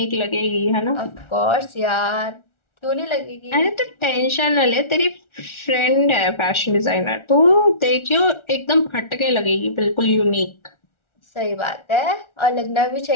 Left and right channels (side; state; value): right; late; 1.4 ms